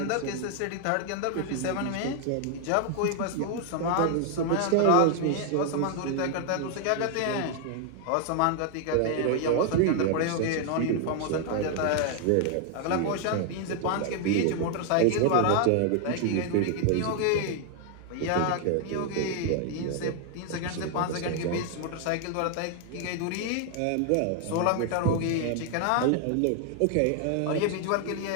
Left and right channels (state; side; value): different; both; correlation 0.00